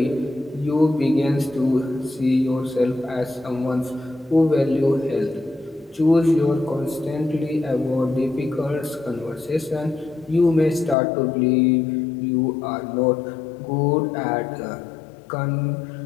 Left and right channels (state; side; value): drops out; right; at 11.0 s